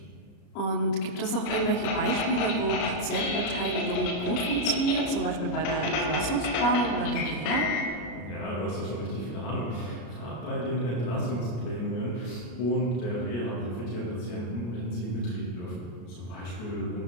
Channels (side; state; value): right; late; 33 ms